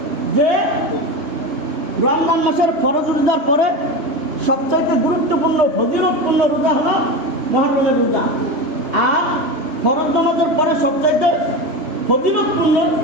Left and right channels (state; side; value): late; left; 3.2 ms